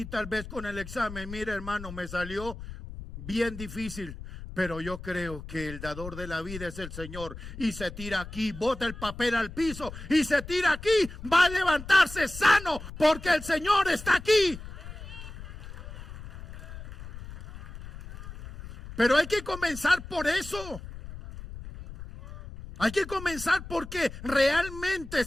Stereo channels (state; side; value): noise; left; rumble, 12 dB below the sound